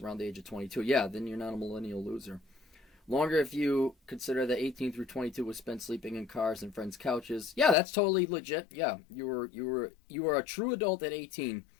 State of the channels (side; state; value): right; drops out; at 7.8 s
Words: around the age of 22. Yeah, then you're not a millennial loser. Longer if you consider that 18 through 22 was spent sleeping in cars and friends' couches. Yeah, that's totally legit. Yeah, you were a true adult at 18,